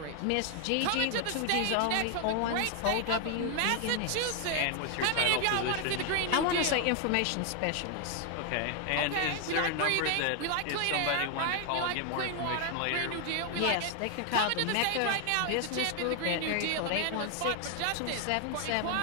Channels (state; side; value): different; both; correlation 0.00